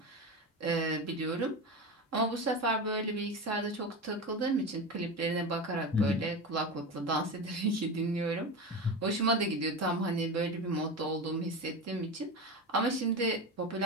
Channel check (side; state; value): both; normal; correlation 0.23